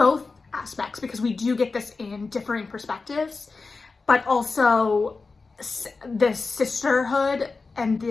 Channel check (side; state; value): right; quieter; 4.1 dB